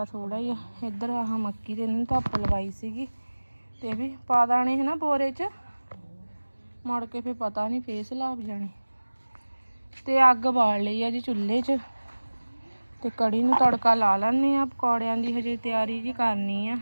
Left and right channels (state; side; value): inverted; both; correlation -1.00